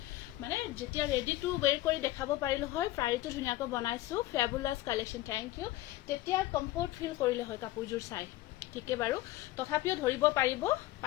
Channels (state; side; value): quieter; right; 16.3 dB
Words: মানে যেতিয়া ৰেডি টু ওয়্যাৰ কৰি দেখাব পাৰিলে হয় প্ৰাইটো ধুনিয়াকৈ বনাইছো ফেবুলাস কালেকশন থ্যাংক ইউ তেতিয়া কমফৰ্ট ফিল কৰিলে হয় কাপোৰজোৰ চাই ঠিকে বাৰু তথাপিও ধৰিব পাৰিব